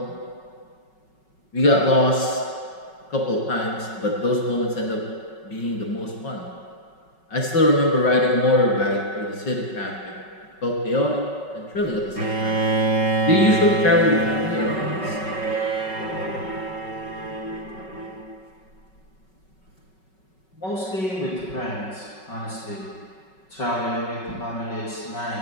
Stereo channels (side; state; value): right; late; 5.3 ms